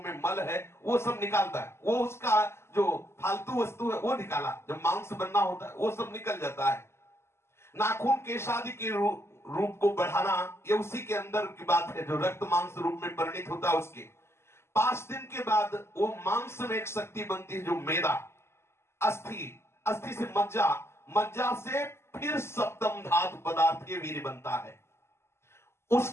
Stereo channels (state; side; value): late; right; 0.12 ms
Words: मल है, वो सब निकालता है। वो उसका जो फालतू वस्तु है वो निकाला, जब मांस बनना होता है वो सब निकल जाता है। नाखून केश आदि के रूप को बढ़ाना, ये उसी के अंदर की बात है, जो रक्त मांस रूप में परिणित होता है उसके। 5 दिन के बाद वो मांस में एक शक्ति बनती है जो मेदा, अस्थि, अस्थि से मज्जा, मज्जा से फिर सप्तम धातु पदार्थ के वीर्य बनता है।